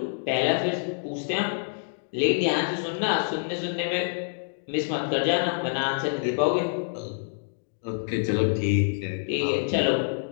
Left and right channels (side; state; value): right; silent; digital silence